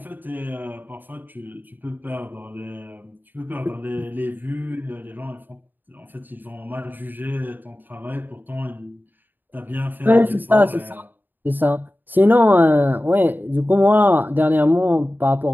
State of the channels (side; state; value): left; late; 0.090 ms